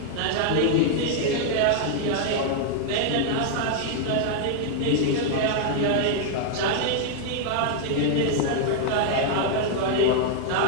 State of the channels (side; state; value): both; different; correlation 0.00